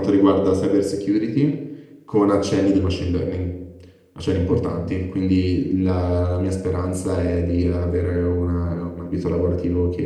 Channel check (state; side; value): identical; both; correlation 1.00